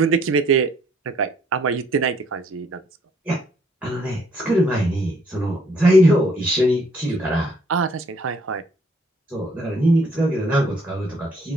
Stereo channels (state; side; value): normal; both; correlation 0.65